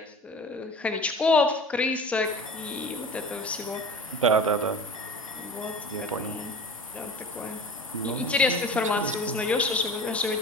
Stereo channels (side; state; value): both; normal; correlation 0.38